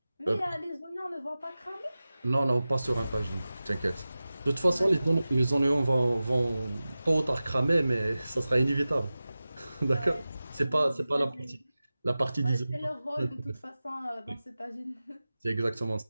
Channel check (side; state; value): both; inverted; correlation -0.96